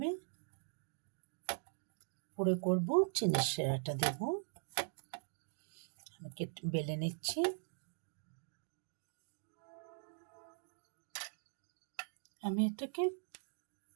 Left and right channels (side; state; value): left; silent; digital silence